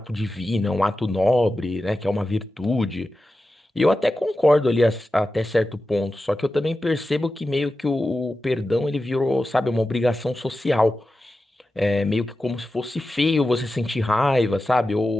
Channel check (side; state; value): both; normal; correlation 0.92